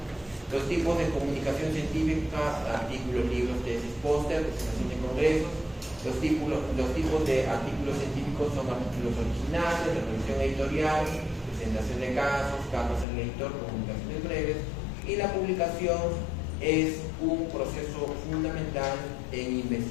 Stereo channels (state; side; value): drops out; right; at 13.1 s